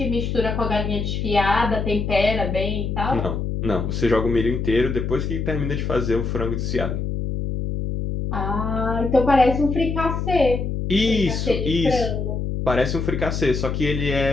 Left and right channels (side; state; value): left; noise; hum, 2 dB below the sound